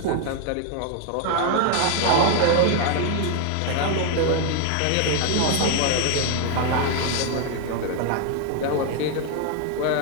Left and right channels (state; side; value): different; both; correlation 0.00